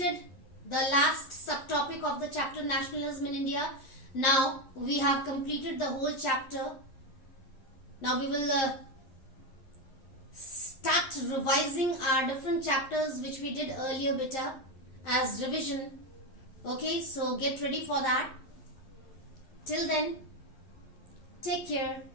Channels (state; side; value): late; right; 11 ms